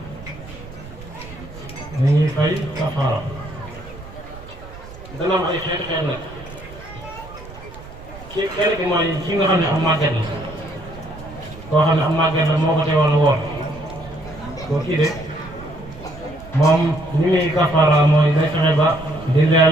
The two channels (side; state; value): right; noise; rumble, 17 dB below the sound